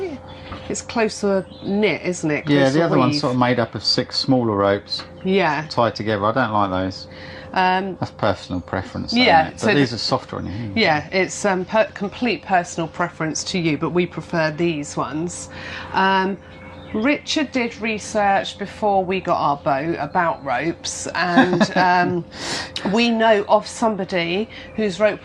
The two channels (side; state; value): both; identical; correlation 1.00